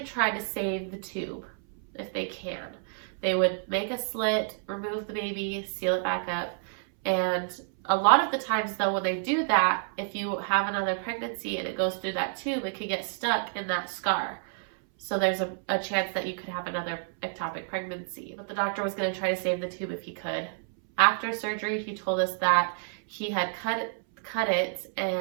try to save the tube if they can. They would make a slit, remove the baby, seal it back up, and a lot of the times though, when they do that, if you have another pregnancy and it goes through that tube, it could get stuck in that scar. So there's a chance that you could have another ectopic pregnancy. But the doctor was going to try to save the tube if he could. After surgery, he told us that he had cut it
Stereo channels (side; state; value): left; silent; 58 dB below the other